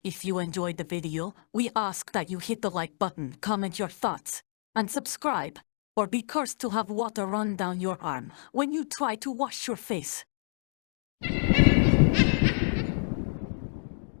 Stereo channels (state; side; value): silent; right; digital silence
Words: If you enjoyed the video, we ask that you hit the like button, comment your thoughts, and subscribe, or be cursed to have water run down your arm when you try to wash your face.